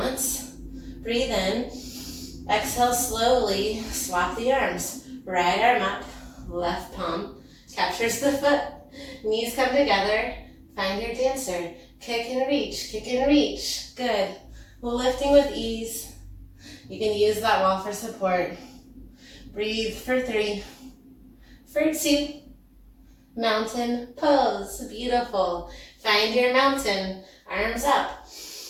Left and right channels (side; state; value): both; identical; correlation 1.00